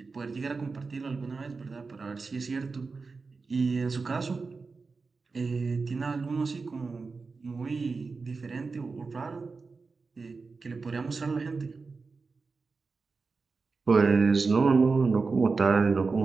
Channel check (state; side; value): quieter; left; 4.3 dB